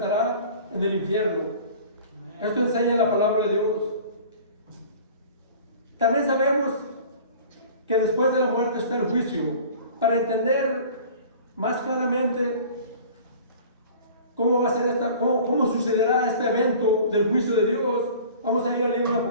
en el infierno. Esto enseña la palabra de Dios. También sabemos que después de la muerte está el juicio. Para entender más claramente cómo sucederá este evento del juicio de Dios, vamos a ir al libro de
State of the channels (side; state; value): both; inverted; correlation -0.44